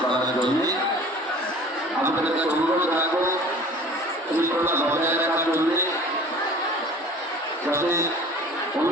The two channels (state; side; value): normal; both; correlation 0.45